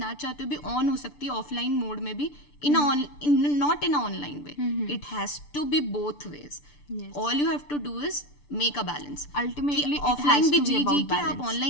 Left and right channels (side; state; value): right; late; 6.8 ms